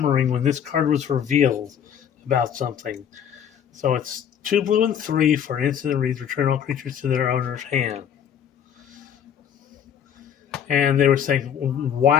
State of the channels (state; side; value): quieter; right; 8.8 dB